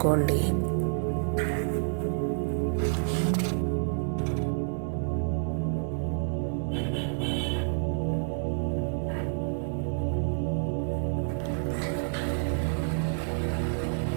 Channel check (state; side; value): silent; left; digital silence